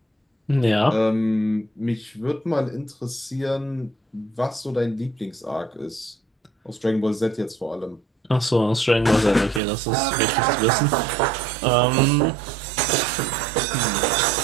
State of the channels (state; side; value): drops out; left; at 9.6 s